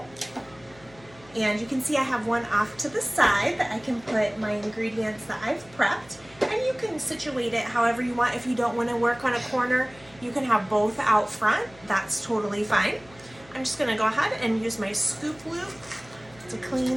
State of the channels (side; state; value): left; noise; hum, 25 dB below the sound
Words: And you can see I have one off to the side that I can put my ingredients that I've prepped. And you can situate it however you want. If you don't want to work on a corner, you can have both out front. That's totally fine. I'm just gonna go ahead and use my scoop loop to